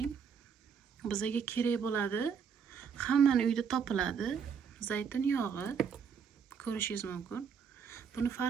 Bizga kerak bo'ladi, hammani uyda topiladi, zaytun yog'i ko'rishingiz mumkin. Buni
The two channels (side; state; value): left; quieter; 6.8 dB